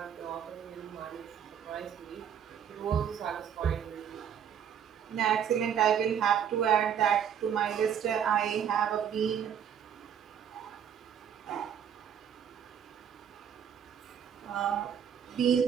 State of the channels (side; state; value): left; quieter; 8.5 dB